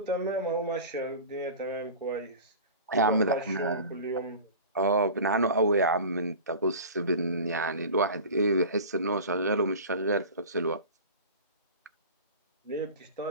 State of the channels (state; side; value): inverted; both; correlation -0.36